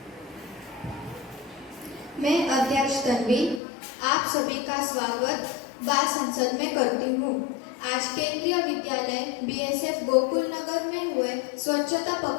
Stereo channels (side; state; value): right; drops out; at 3.6 s